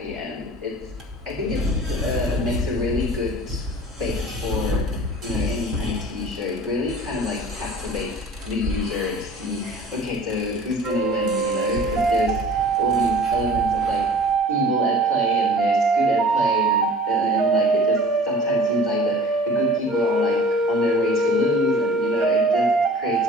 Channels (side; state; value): both; normal; correlation 0.45